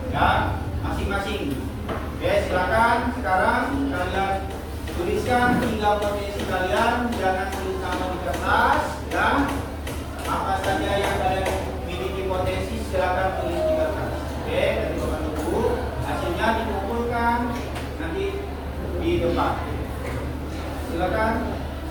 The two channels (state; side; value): identical; both; correlation 1.00